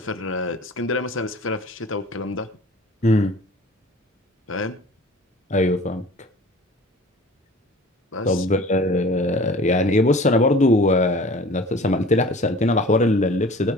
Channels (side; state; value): both; normal; correlation 0.44